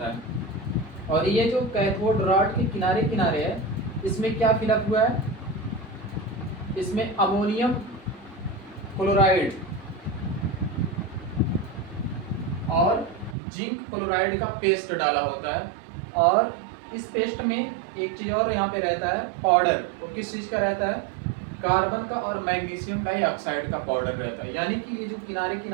है। और ये जो कैथोड रॉड के किनारे किनारे है, इसमें क्या फिलअप हुआ है, इसमें अमोनियम क्लोराइड और जिंक क्लोराइड का पेस्ट डाला होता है, और इस पेस्ट में एक चीज और यहाँ पे रहता है पाउडर। वो किस चीज का रहता है? कार्बन का और मैग्नीशियम डाइऑक्साइड का पाउडर रहता है। यानी कि ये जो किनारे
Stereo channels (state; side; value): drops out; left; at 13.4 s